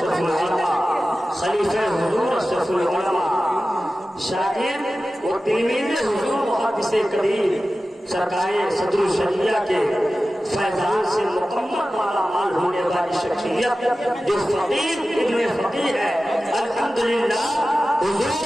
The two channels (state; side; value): normal; both; correlation 0.95